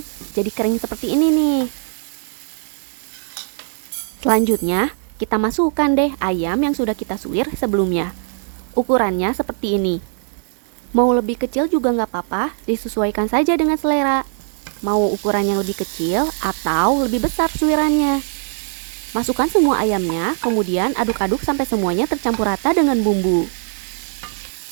jadi kering seperti ini nih. Selanjutnya, kita masukkan deh ayam yang sudah kita suwir sebelumnya. Ukurannya seperti ini. Mau lebih kecil juga nggak apa-apa, disesuaikan saja dengan selera. Mau ukurannya lebih kecil atau lebih besar suwirannya. Masukkan semua ayamnya, kemudian aduk-aduk sampai semuanya tercampur rata dengan bumbu.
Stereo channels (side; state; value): left; silent; digital silence